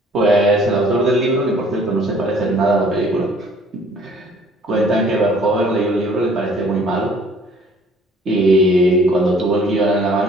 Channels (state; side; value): normal; both; correlation 0.56